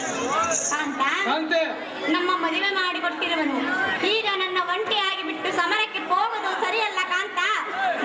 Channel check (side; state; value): both; identical; correlation 1.00